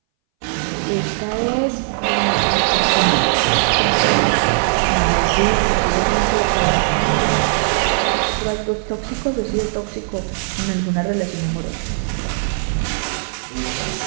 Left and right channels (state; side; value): silent; left; 63 dB below the other